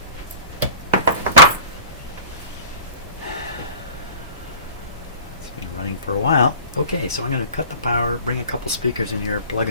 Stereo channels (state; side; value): inverted; both; correlation -0.41